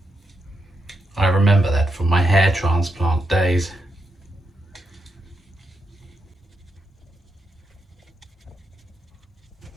I remember that from my hair transplant days.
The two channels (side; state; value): both; normal; correlation 0.83